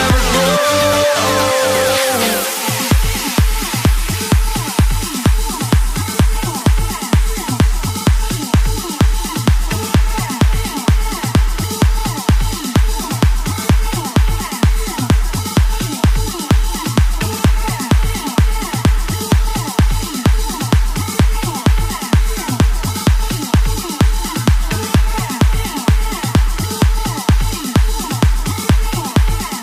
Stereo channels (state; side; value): identical; both; correlation 1.00